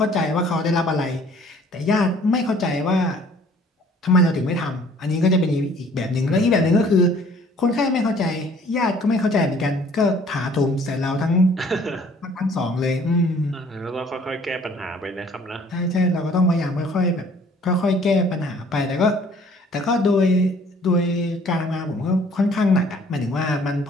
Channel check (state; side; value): normal; both; correlation 0.56